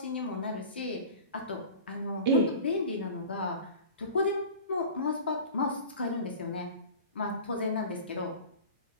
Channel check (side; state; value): both; inverted; correlation -0.38